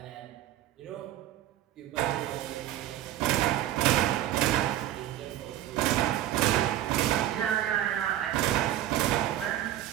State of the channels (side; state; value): left; quieter; 12.9 dB